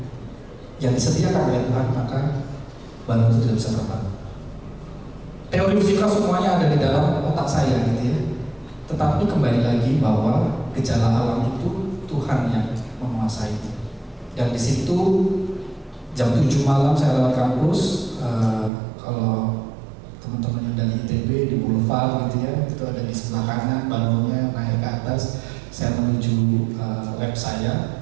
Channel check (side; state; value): left; drops out; at 18.7 s